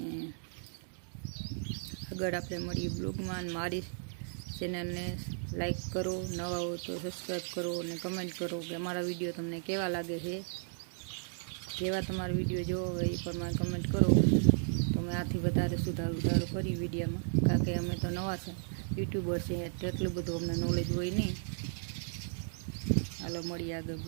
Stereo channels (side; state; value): left; silent; digital silence